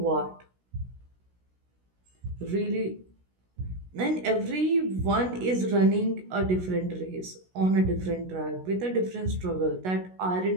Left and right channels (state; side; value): late; left; 16 ms